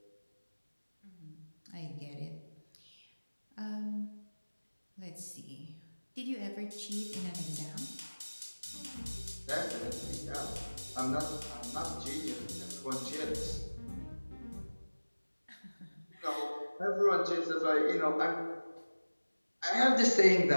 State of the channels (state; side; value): inverted; both; correlation -1.00